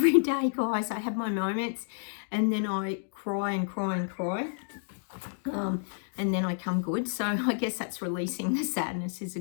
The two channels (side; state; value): right; silent; digital silence